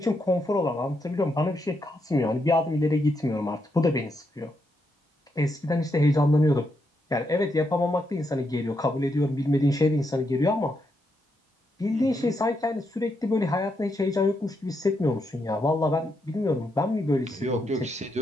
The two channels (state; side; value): normal; both; correlation 0.81